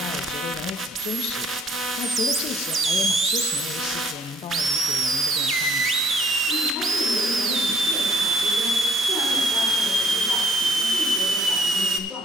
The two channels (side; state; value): both; normal; correlation 0.62